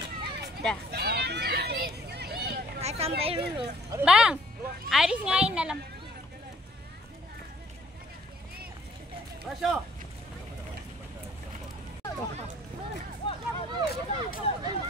Dah. Sampai dulu. Bang, Aris ngain dalam. Masya.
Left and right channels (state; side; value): normal; both; correlation 0.60